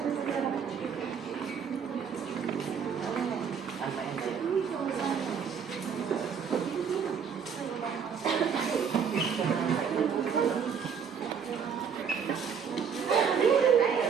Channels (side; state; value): left; quieter; 6.8 dB